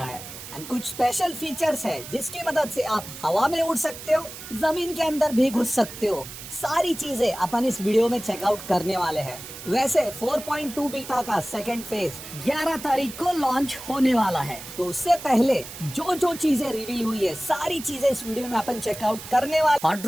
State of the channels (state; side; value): noise; right; hiss, 12 dB below the sound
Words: है। एंड कुछ स्पेशल फीचर्स है जिसकी मदद से आप हवा में उड़ सकते हो, जमीन के अंदर भी घुस सकते हो। सारी चीजें अपन इस वीडियो में चेकआउट करने वाले हैं। वैसे 4.2 बीटा का सेकंड फेज 11 तारीख को लॉन्च होने वाला है, तो उससे पहले जो जो चीजें रिवील हुई है सारी चीजें इस वीडियो में अपन चेकआउट करने वाले। हॉट